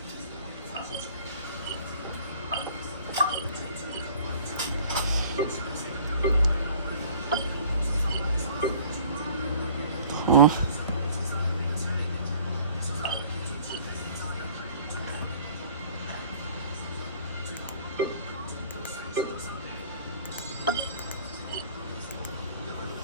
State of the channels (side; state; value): both; inverted; correlation -0.51